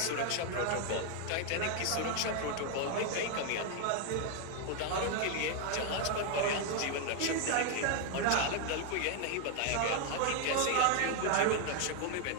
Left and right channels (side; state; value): both; different; correlation 0.00